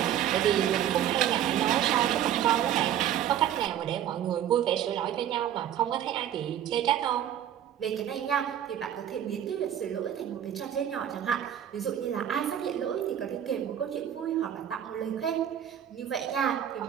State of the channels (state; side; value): quieter; left; 10.4 dB